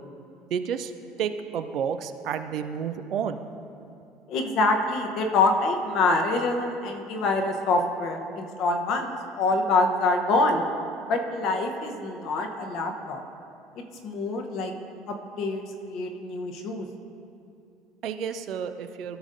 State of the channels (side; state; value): both; normal; correlation 0.48